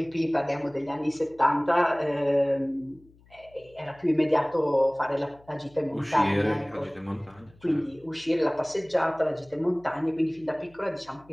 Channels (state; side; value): noise; left; hum, 28 dB below the sound